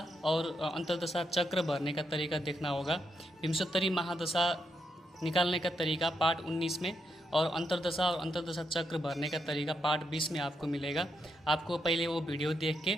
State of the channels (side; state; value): both; normal; correlation 0.81